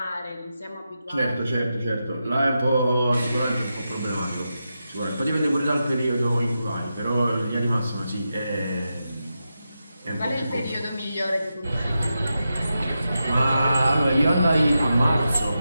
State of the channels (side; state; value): both; inverted; correlation -0.89